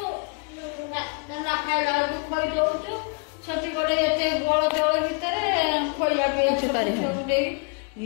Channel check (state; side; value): quieter; right; 35.0 dB